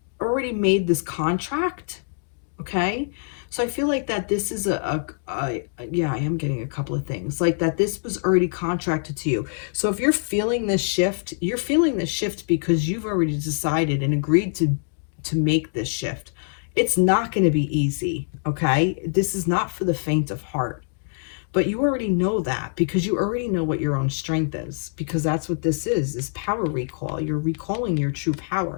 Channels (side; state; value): right; silent; digital silence